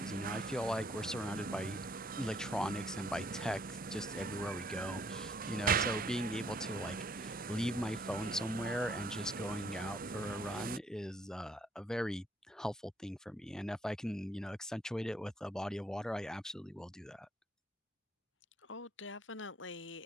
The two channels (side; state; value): both; normal; correlation 0.65